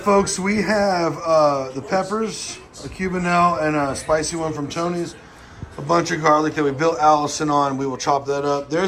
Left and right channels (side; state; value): both; identical; correlation 1.00